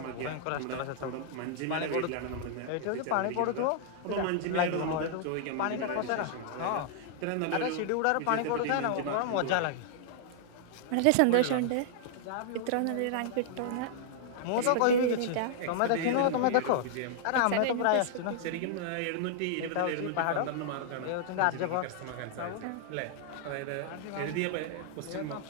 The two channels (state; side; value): different; both; correlation -0.01